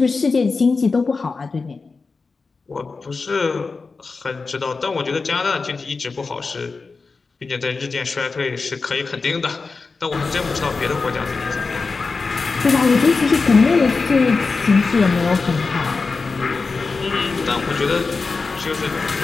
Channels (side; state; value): right; quieter; 4.3 dB